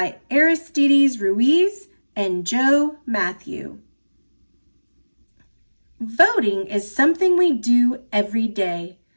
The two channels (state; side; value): inverted; both; correlation -1.00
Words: Aristides Ruiz and Joe Matthew. Voting is something we do every day.